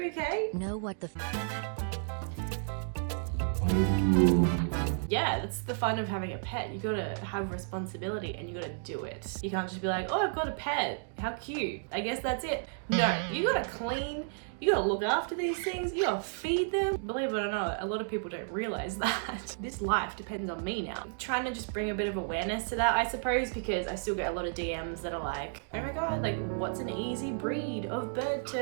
okay? No, what the Yeah, that's the fun of having a pet. You gotta have responsibility and you gotta do it. You can't just be like, oh, I've got a pet. How cute. I guess that's it. No, you gotta clean. You gotta look after these things. You gotta feed them. Believe it or not, a lot of people don't realize that. This life depends on me now. I'm trying to just bring a bit of awareness to that, I suppose, because I still get a lot of DMs that are like, oh my God, like what's an easy breed of bird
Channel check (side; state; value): left; silent; digital silence